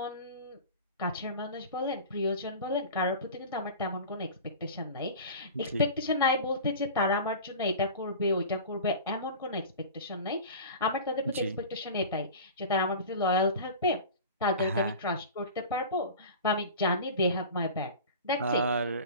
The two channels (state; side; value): inverted; both; correlation -0.35